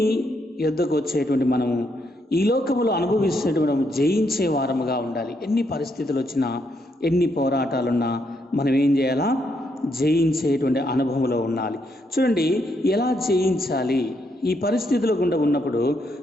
యొద్దకు వచ్చేటువంటి మనము ఈ లోకములో అనుభవిస్తున్నటువంటి మనం జయించే వారముగా ఉండాలి. ఎన్ని పరిస్థితులు వచ్చినా, ఎన్ని పోరాటాలున్నా మనం ఏం చేయాలా? జయించేటువంటి అనుభవంలో ఉండాలి. చూడండి, ఎలా జయించాలి? ఈ పరిస్థితుల గుండా ఉన్నప్పుడు,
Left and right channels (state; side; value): normal; both; correlation 0.77